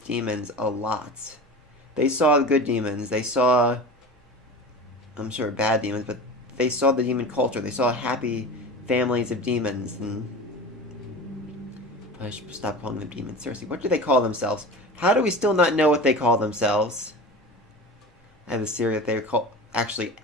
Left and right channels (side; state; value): both; normal; correlation 0.33